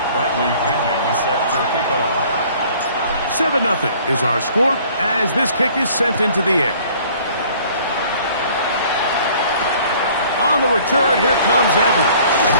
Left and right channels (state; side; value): inverted; both; correlation -0.54